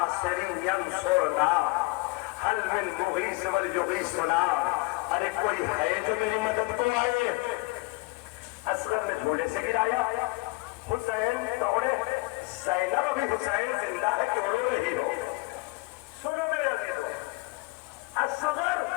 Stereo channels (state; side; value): quieter; right; 25.3 dB